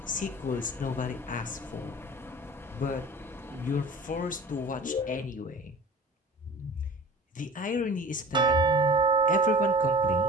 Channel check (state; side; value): normal; both; correlation 0.42